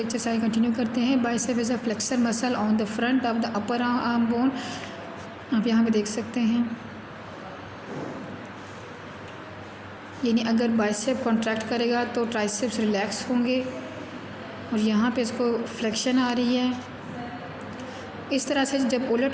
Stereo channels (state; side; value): identical; both; correlation 1.00